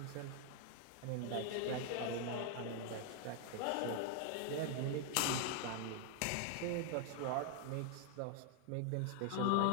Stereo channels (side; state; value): both; different; correlation 0.01